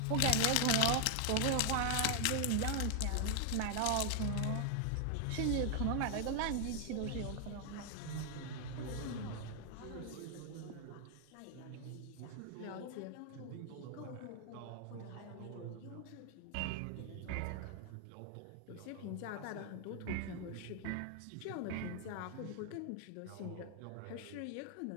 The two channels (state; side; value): different; both; correlation 0.00